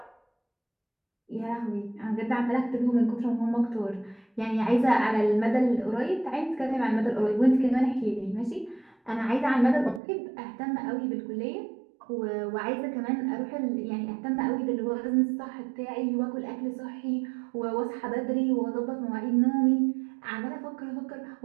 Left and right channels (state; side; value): drops out; left; at 10.0 s